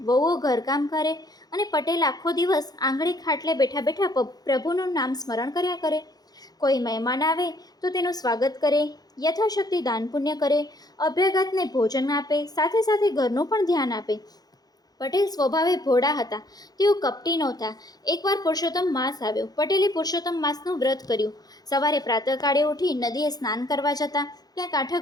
વહુઓ ઘરકામ કરે અને પટેલ આખો દિવસ આંગળે ખાટલે બેઠા બેઠા પ્રભુનું નામ સ્મરણ કર્યા કરે. કોઈ મહેમાન આવે તો તેનું સ્વાગત કરે, યથાશક્તિ દાન પુણ્ય કરે, અભ્યાગતને ભોજન આપે, સાથે સાથે ઘરનું પણ ધ્યાન આપે. પટેલ સ્વભાવે ભોળા હતા. તેઓ કપટી નહોતા. એકવાર પુરુષોત્તમ માસ આવ્યો. પટેલે પુરુષોત્તમ માસનું વ્રત કર્યું. સવારે પ્રાતઃકાળે ઉઠી નદીએ સ્નાન કરવા જતા, ત્યાં કાંઠા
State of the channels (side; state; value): right; late; 0.19 ms